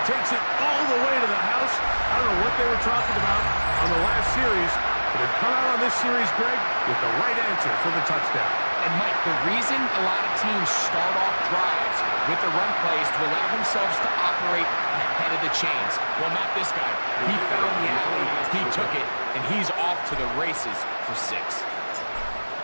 takes it all the way to the house. I don't know what they were talking about on the last series, but they've come out on this series, Greg, with the right answer for the touchdown. And, Mike, the reason a lot of teams start off drives with the run plays to allow themselves to operate ahead of the chains. Well, not this guy. He found the alley, he took it, and he's off to the races for 6.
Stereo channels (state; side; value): inverted; both; correlation -1.00